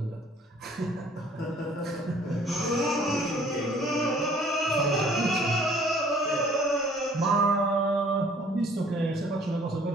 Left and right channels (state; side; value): normal; both; correlation 0.56